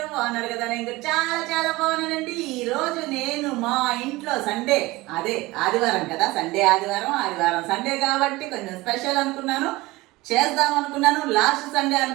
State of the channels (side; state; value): left; quieter; 20.5 dB